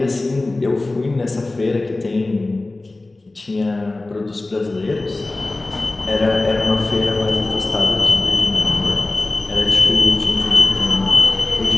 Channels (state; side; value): quieter; right; 3.0 dB